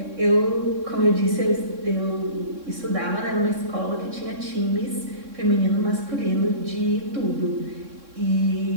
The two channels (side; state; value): left; late; 3.6 ms